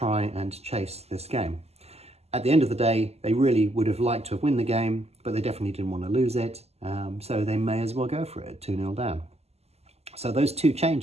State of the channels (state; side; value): late; left; 0.30 ms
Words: and chase this game. At the end of the day, they really would have liked to have won the game, but they definitely didn't want to lose it. So they may as well go for it, 2-0 down. So those 2